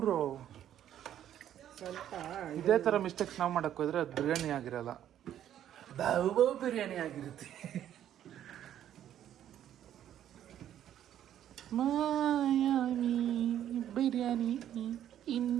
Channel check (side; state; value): left; quieter; 10.9 dB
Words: ಸ್ವಲ್ಪ ಇದೇ ಥರ ಮಿಸ್ಟೇಕ್ಸ್ ನಾವು ಮಾಡಕ್ಕೆ ಹೋದ್ರೆ ಅದು ಬಿರಿಯಾನಿ ಆಗಿರಲ್ಲ, ಬಾವು ಬಿರಿಯಾನಿ ಆಗಿರುತ್ತೆ. ಮಾಯಾವಿ ಬಿರಿಯಾನಿ